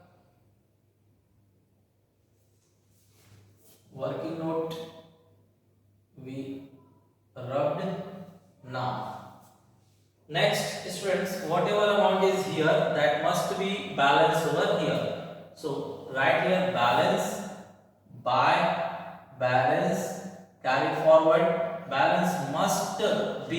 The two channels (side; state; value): both; identical; correlation 1.00